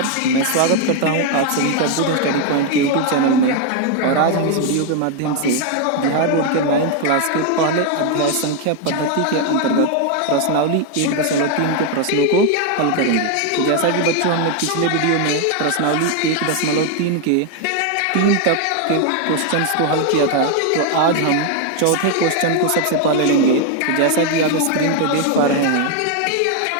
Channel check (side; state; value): both; different; correlation 0.01